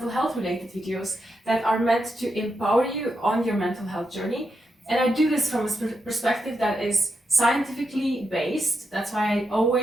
health related videos that are meant to empower you on your mental health journey. And I do this from a perspective that is scientifically based. That's why I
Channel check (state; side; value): normal; both; correlation 0.84